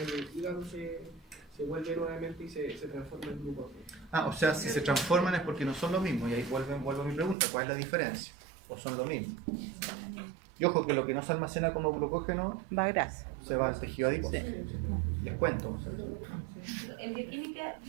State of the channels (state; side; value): drops out; left; at 7.4 s